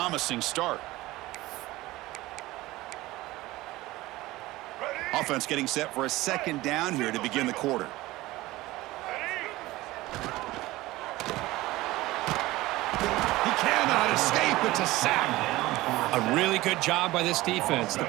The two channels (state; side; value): quieter; left; 18.5 dB